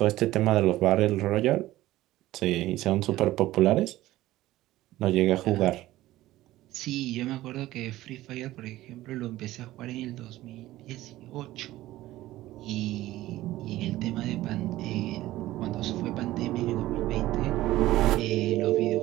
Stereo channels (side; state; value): left; quieter; 16.0 dB